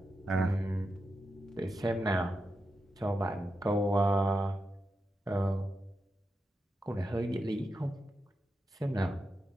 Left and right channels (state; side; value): normal; both; correlation 0.87